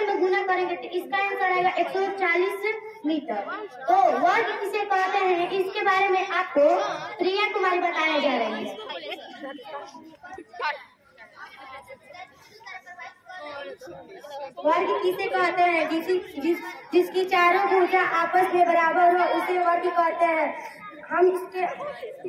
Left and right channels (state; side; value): identical; both; correlation 1.00